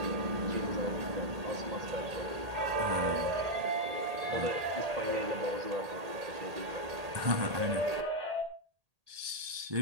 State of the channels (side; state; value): left; late; 1.8 ms